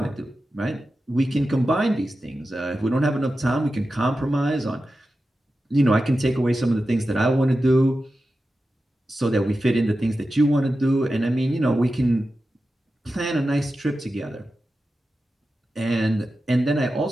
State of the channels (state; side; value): normal; both; correlation 0.92